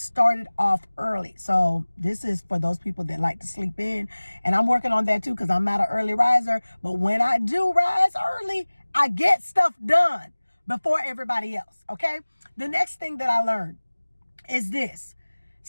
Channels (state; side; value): inverted; both; correlation -1.00